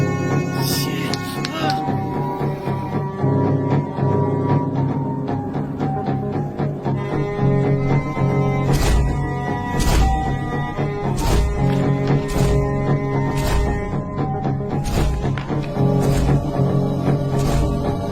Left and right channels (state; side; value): identical; both; correlation 1.00